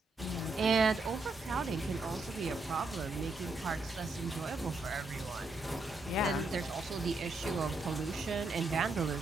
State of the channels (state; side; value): quieter; left; 3.1 dB